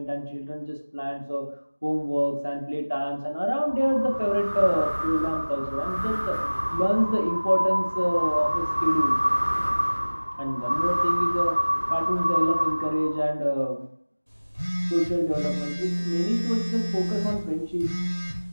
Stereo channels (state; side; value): inverted; both; correlation -1.00